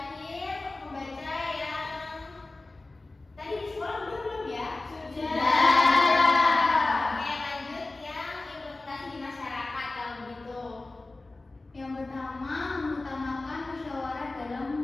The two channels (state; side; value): quieter; right; 3.1 dB